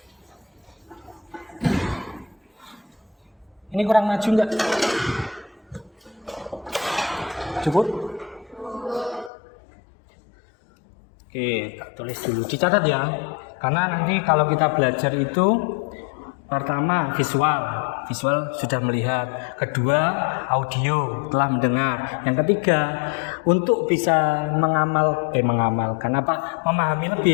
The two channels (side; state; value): right; drops out; at 9.3 s